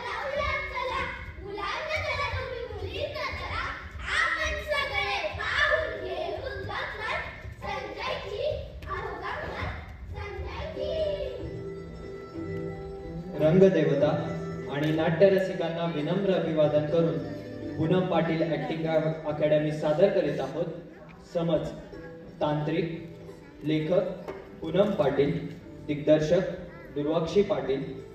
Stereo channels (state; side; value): identical; both; correlation 1.00